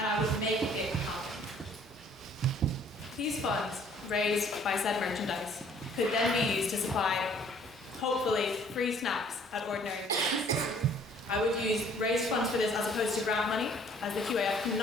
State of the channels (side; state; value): both; normal; correlation 0.58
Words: I would make it happen. These funds, raised by said merchandise, could then be used to supply, hopefully, free snacks at ordinary meals. I would use raised funds for this as opposed to grant money, as the QAF